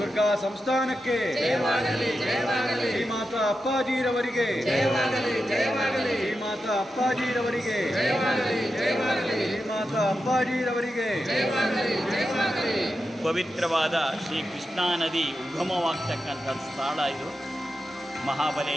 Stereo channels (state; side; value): normal; both; correlation 0.89